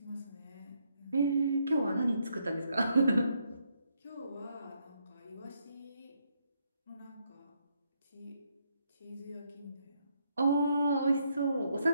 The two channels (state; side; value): inverted; both; correlation -0.75